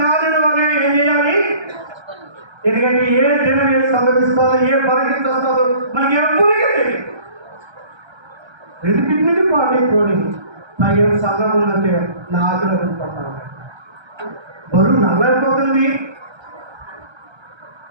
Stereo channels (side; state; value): left; late; 1.3 ms